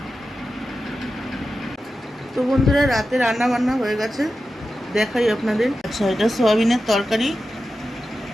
তো বন্ধুরা, রাতে রান্না বান্না হয়ে গেছে, দেখাই আপনাদের। আচ্ছা, এটা সয়াবিনের তরকারি,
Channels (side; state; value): both; normal; correlation 0.92